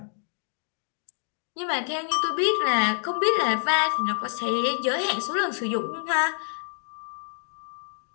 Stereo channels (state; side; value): silent; right; digital silence